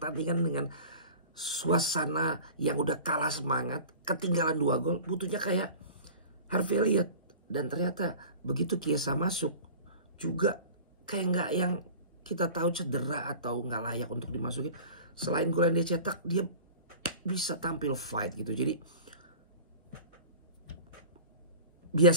dengan suasana yang udah kalah semangat, ketinggalan 2 gol, butuhnya kayak Harvey Elliott. Dan ternyata begitu Chiesa masuk juga kayak nggak yang kita tahu cedera atau nggak layak untuk dimasukin. Selain gol yang dia cetak, dia bisa tampil fight gitu. Jadi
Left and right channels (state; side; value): inverted; both; correlation -0.39